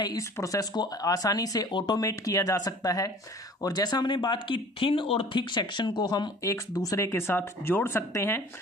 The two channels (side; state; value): both; normal; correlation 0.48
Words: इस प्रोसेस को आसानी से ऑटोमेट किया जा सकता है, और जैसा हमने बात की थिन और थिक सेक्शन को हम एक दूसरे के साथ जोड़ सकते हैं।